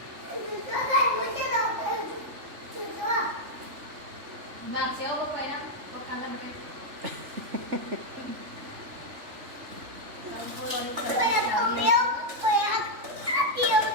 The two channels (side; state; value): left; late; 3.5 ms